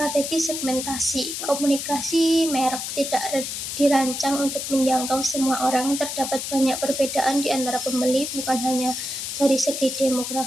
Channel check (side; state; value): left; noise; hiss, 5 dB below the sound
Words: segmentasi. Komunikasi merek tidak dirancang untuk menjangkau semua orang. Terdapat banyak perbedaan di antara pembeli, bukan hanya dari segi